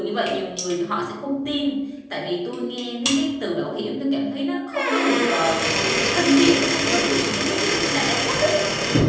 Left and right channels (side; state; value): both; identical; correlation 1.00